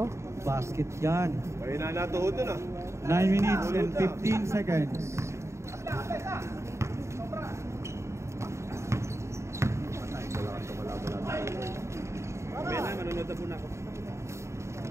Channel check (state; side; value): late; left; 0.14 ms